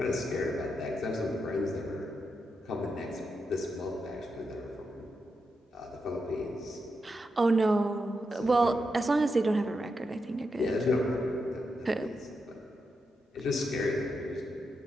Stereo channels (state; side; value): normal; both; correlation 0.85